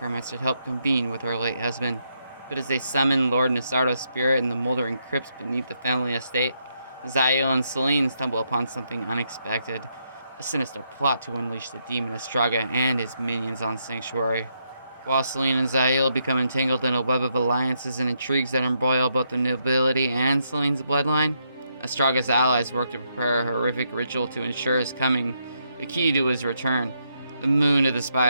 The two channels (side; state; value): both; inverted; correlation -0.78